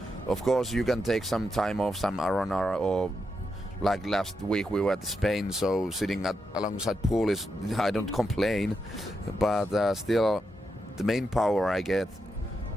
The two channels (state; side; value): normal; both; correlation 0.85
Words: Of course, you can take some time off, some R&R, or last week we were at Spain, so sitting alongside pool is, I don't complain, but still the main power I get